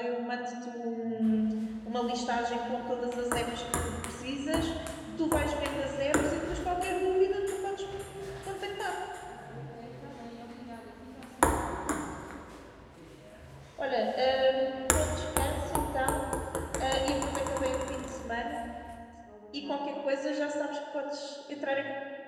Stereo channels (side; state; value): both; identical; correlation 1.00